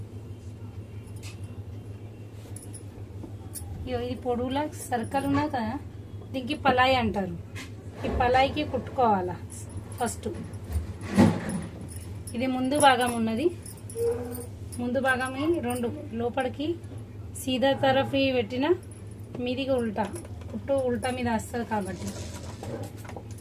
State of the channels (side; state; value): both; identical; correlation 1.00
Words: ఇది పొడవులా సర్కిల్ ఉన్నది కదా, దీనికి పలాయి అంటారు. ఈ పలాయికి కుట్టుకోవాలా ఫస్ట్. ఇది ముందు భాగం ఉన్నది, ముందు భాగం రెండు లోపలికి సీదా తరఫీ పెట్టిన మీదికి ఉల్టా, కుట్టు ఉల్టా మీద వస్తుంది కాబట్టి.